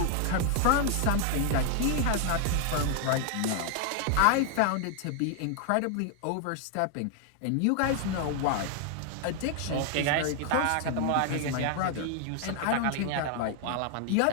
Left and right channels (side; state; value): both; different; correlation 0.00